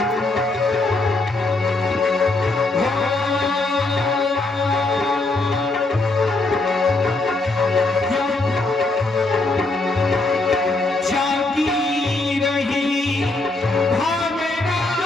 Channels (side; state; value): right; quieter; 3.1 dB